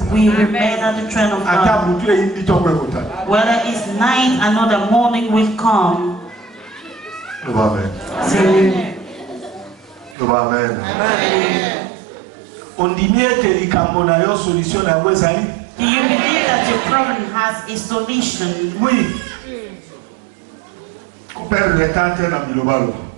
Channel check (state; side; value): drops out; left; at 10.2 s